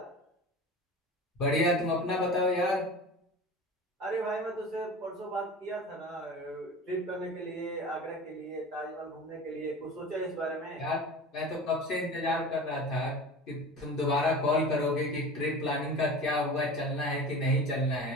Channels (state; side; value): normal; both; correlation 0.35